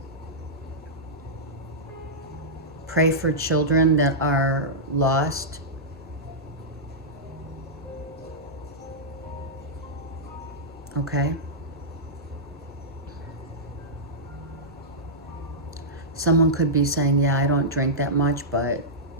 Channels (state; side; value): normal; both; correlation -0.12